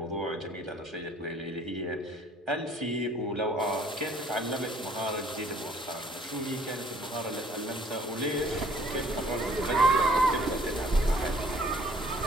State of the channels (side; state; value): both; normal; correlation 0.58